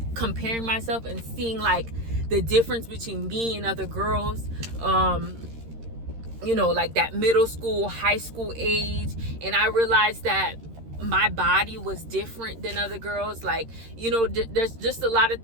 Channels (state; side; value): late; left; 13 ms